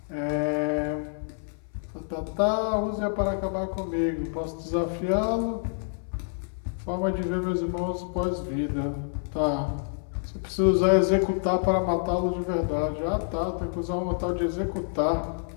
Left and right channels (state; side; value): silent; right; 60 dB below the other